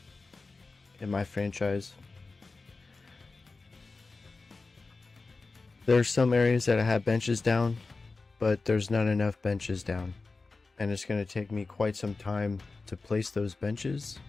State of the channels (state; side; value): quieter; right; 3.8 dB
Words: in my franchise. There's some areas that I have benches down, but there's not enough benches down. And it's going to take me quite some time to place those benches.